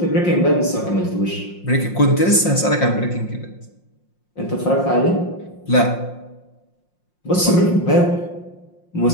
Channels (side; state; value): right; late; 5.6 ms